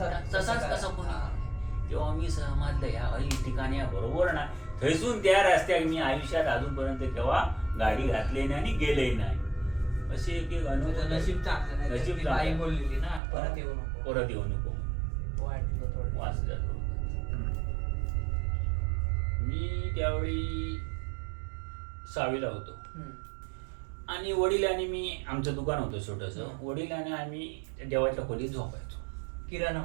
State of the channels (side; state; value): left; drops out; at 13.2 s